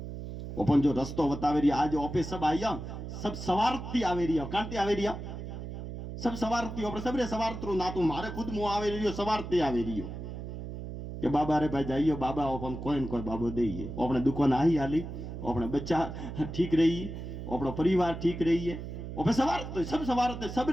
ओपन जो रस्तो बतावे रही आज ओपे सब आया सब सवारती आवे रही कांति आवे रही सब सवारती ओपरे सबरे सवारतरो ना तो मारे खुद मु आवे रही सवारती आवे रही। कि बाबा रे भाई जाइयो बाबा अपन कोई न कोई बाबो दे अपने दुकान आई हाली अपने बच्चा ठीक रही अपना परिवार ठीक रही है और सवार सब सवार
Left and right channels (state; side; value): noise; right; hum, 8 dB below the sound